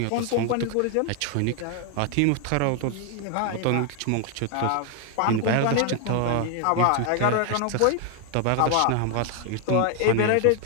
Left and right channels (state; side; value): different; both; correlation 0.01